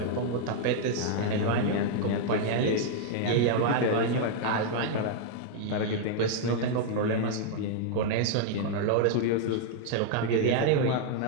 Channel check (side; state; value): both; different; correlation 0.00